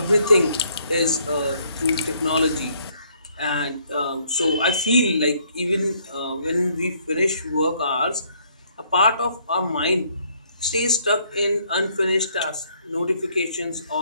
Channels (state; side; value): inverted; both; correlation -0.66